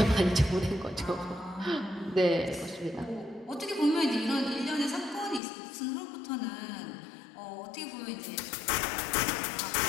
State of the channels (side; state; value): right; drops out; at 5.4 s